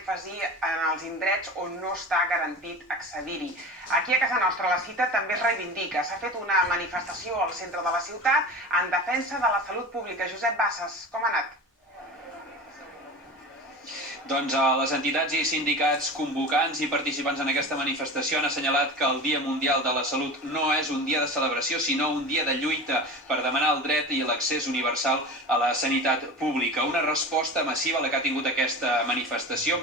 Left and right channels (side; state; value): both; normal; correlation 0.32